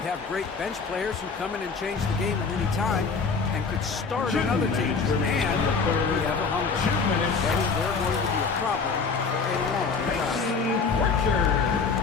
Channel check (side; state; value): right; quieter; 4.9 dB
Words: have great bench players who come in and change the game at any time and could start another team. And we have a hunger. They're going to be a problem for a long time."